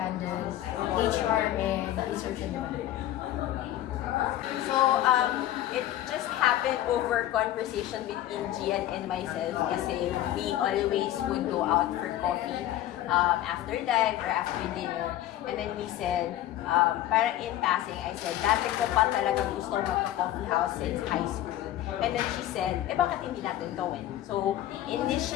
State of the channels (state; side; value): quieter; right; 13.4 dB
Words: HR and research and development. So, it just happened over conversation between Gian and myself kasi we always would go out for coffee after dive or after dinner. And then we said, parang in passing, I said, dati ko pa talagang gusto magka-coffee house since high school. And then she said, bakit hindi natin gawin? So,